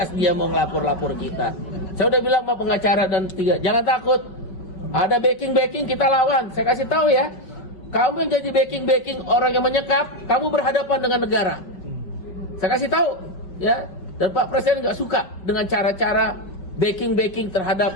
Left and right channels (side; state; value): right; late; 5.4 ms